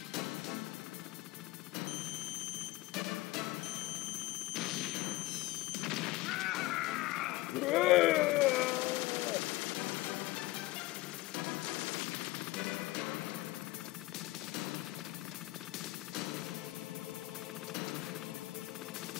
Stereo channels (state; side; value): quieter; right; 19.2 dB